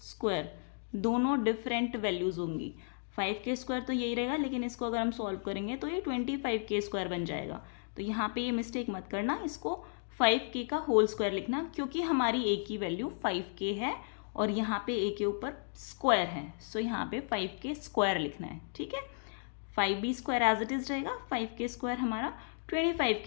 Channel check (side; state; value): right; silent; digital silence